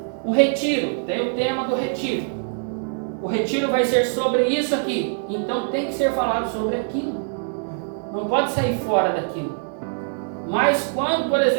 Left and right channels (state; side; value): silent; left; digital silence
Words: um retiro, tem o tema do retiro. O retiro vai ser sobre isso aqui, então tem que ser falado sobre aquilo. Não pode sair fora daquilo. Mas quando, por